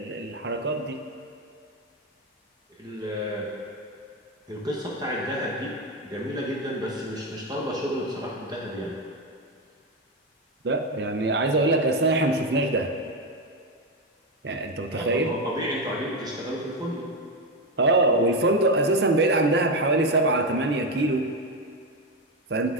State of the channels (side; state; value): both; normal; correlation 0.11